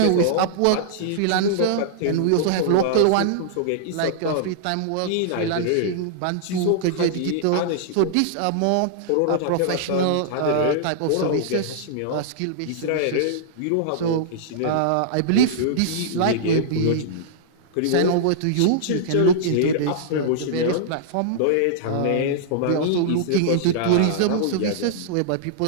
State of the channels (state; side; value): different; both; correlation -0.02